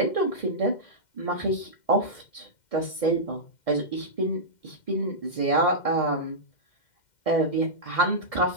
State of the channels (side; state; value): right; late; 2.1 ms